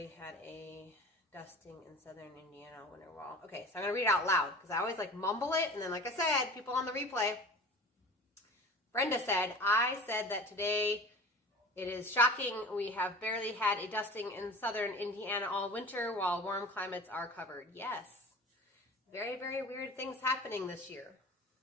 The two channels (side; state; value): both; normal; correlation 0.38